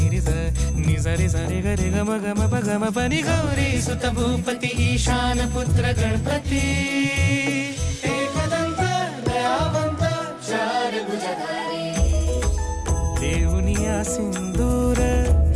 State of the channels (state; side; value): identical; both; correlation 1.00